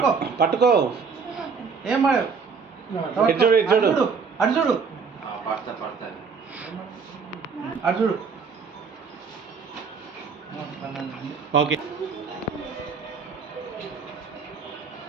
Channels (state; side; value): quieter; left; 5.5 dB